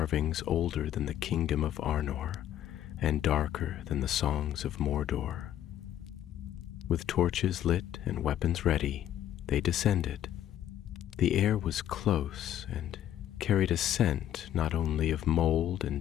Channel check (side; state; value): right; quieter; 11.4 dB